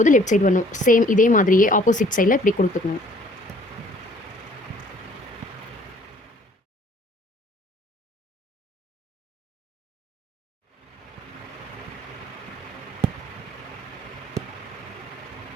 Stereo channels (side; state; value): both; normal; correlation 0.57